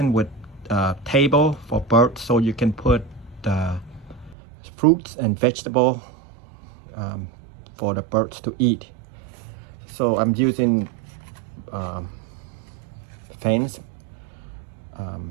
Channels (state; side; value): drops out; left; at 4.4 s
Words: with table for birds, so you can put fruits and vegetable for the birds to eat. So I'm using fence,